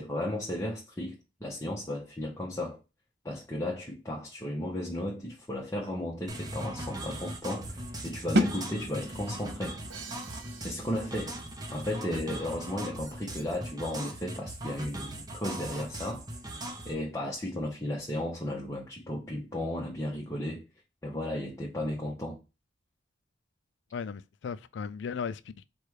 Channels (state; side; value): normal; both; correlation 0.68